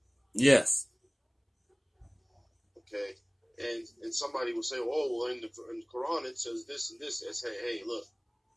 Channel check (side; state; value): both; identical; correlation 1.00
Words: Yes. Okay. And somebody will say, oh, well, in the Quran it says this and this. I say, hey, look,